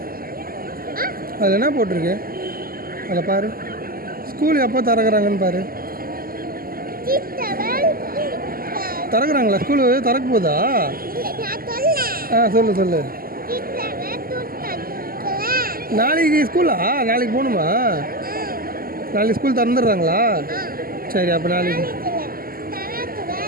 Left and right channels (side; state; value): left; late; 0.42 ms